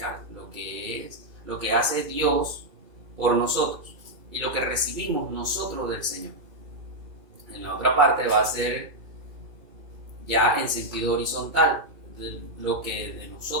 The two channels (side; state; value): left; late; 2.3 ms